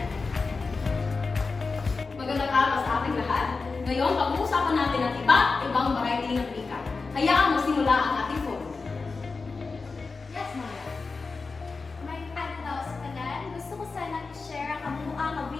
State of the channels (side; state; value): right; quieter; 4.3 dB